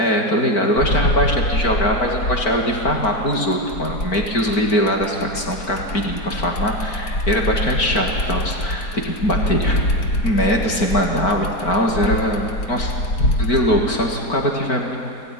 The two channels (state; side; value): late; right; 4.5 ms